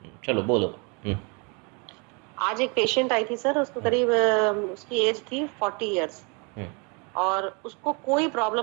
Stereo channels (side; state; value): left; quieter; 32.6 dB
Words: बोलो। हम्म। आज एक पेशेंट आई थी सर, उसको हम्म। करीब उसकी एज थी 40 इयर्स। हम्म। और उसको कोई